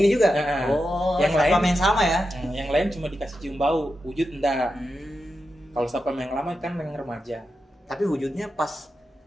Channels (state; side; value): normal; both; correlation 0.89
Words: juga. Yang lain yang sama ya. Yang lain cuma dikasih cium bau, wujud enggak. Kalau satpam yang lama kan yang remaja. Tapi wujudnya pas